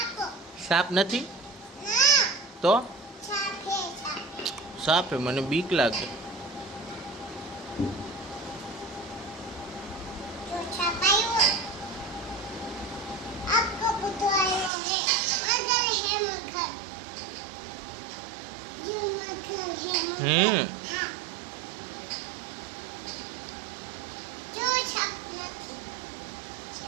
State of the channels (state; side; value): drops out; left; at 14.7 s